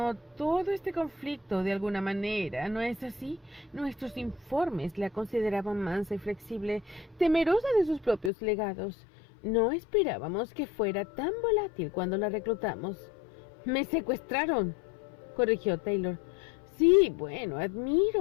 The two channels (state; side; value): drops out; right; at 8.3 s